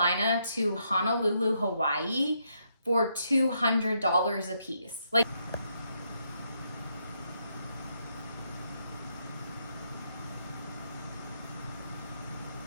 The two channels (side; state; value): both; inverted; correlation -0.77